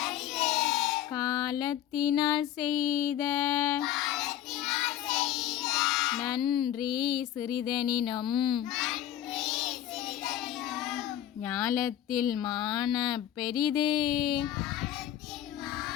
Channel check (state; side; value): quieter; right; 11.8 dB